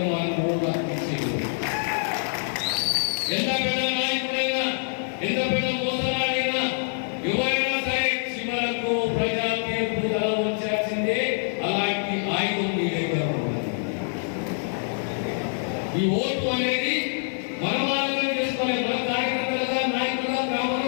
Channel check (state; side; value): silent; right; 61 dB below the other